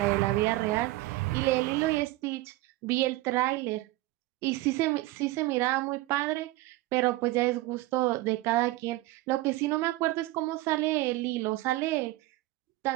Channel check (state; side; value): quieter; left; 18.6 dB